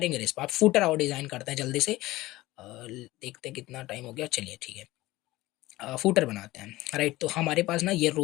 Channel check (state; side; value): quieter; right; 18.2 dB